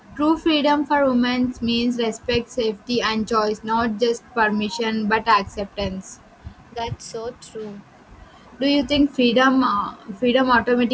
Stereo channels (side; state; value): both; identical; correlation 1.00